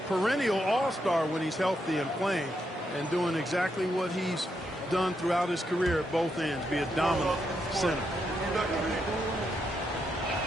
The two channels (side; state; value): both; normal; correlation 0.81